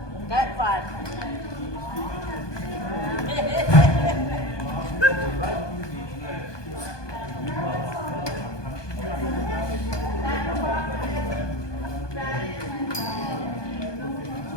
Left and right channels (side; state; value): right; late; 1.2 ms